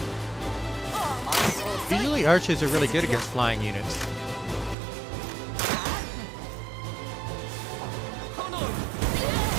Usually archers are really good against flying units.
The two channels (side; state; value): left; drops out; at 4.8 s